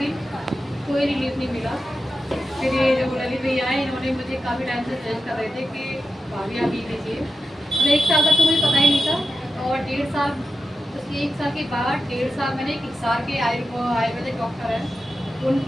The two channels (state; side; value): normal; both; correlation 0.90